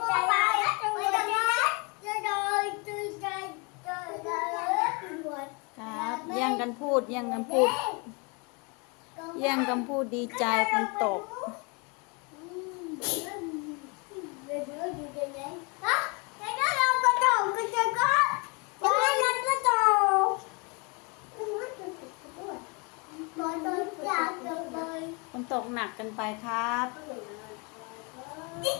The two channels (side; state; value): right; quieter; 31.4 dB